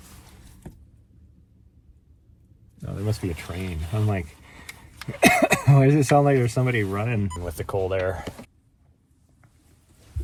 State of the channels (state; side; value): identical; both; correlation 1.00